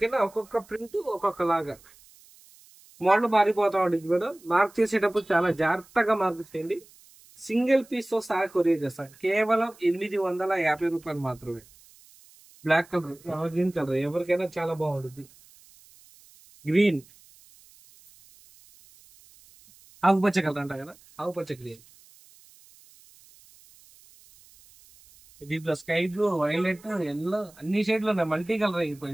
ఒక్కొక్క ప్రింట్ ఒక్కొక్క లాగా మోడల్ మారిపోతా ఉంటుంది మేడం. మార్క్ చేసేటప్పుడు చాలా జాగ్రత్తగా మార్క్ చేయండి. సింగిల్ పీస్ తో సహా కొరియర్ చేస్తాను. కేవలం 850 రూపాయలు మాత్రమే. బ్లాక్ కలర్, గ్రీన్ కలర్ ఎవరికైనా చాలా బాగుంటుంది. గ్రీన్, ఆకుపచ్చ కలర్ అంట కదా, ఆకుపచ్చ గ్రీన్. దీంట్లో స్కై బ్లూ, వైలెట్, ఎల్లో అన్ని షేడ్లు ఉన్నాయి. మల్టీ కలర్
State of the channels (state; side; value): noise; right; hiss, 26 dB below the sound